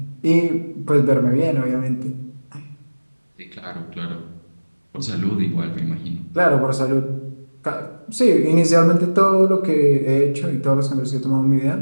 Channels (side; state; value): both; inverted; correlation -1.00